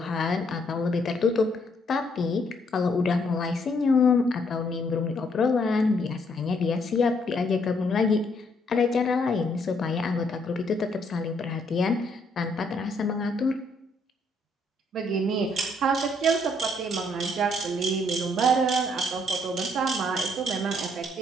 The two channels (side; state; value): both; normal; correlation 0.70